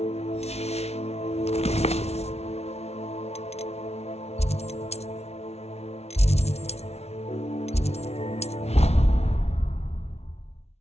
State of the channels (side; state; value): right; late; 0.31 ms